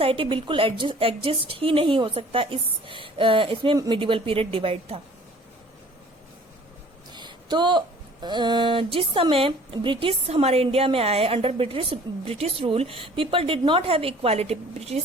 बिल्कुल एग्जिस्ट ही नहीं हो सकता, इसमें मिडिवल पीरियड डिवाइड था। तो जिस समय ब्रिटिश हमारे इंडिया में आए, under British rule, people did not have equality.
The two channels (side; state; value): both; normal; correlation 0.51